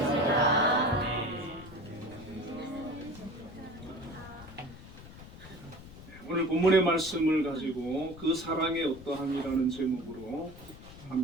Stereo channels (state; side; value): noise; left; rumble, 16 dB below the sound